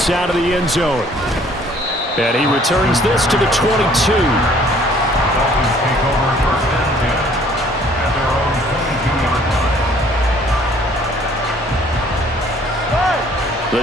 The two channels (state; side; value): normal; both; correlation 0.58